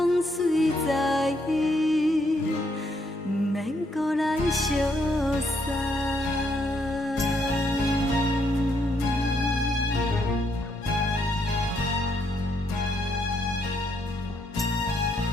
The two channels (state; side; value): normal; both; correlation 0.74